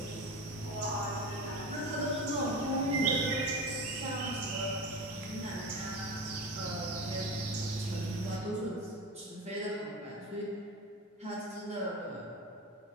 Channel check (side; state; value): both; normal; correlation 0.25